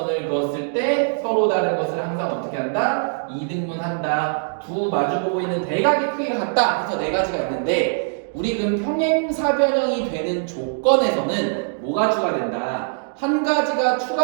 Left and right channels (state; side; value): silent; left; digital silence